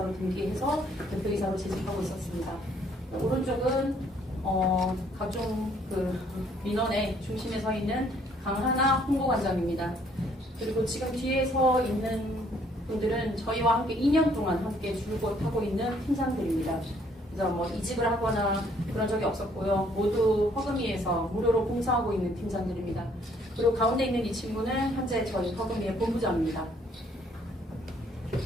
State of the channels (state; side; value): normal; both; correlation 0.64